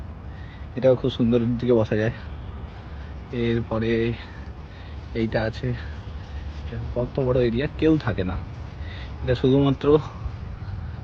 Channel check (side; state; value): both; identical; correlation 1.00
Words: এটাও খুব সুন্দর দিকে বসা যায়। এরপরে এইটা আছে, কত বড় এরিয়া, কেউ থাকে না, এটা শুধুমাত্র